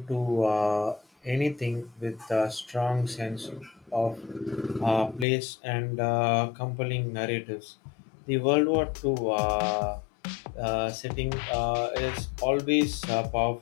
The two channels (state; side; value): drops out; right; at 5.2 s